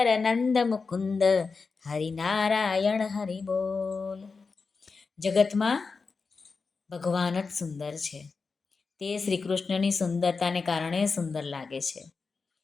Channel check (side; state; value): right; quieter; 4.6 dB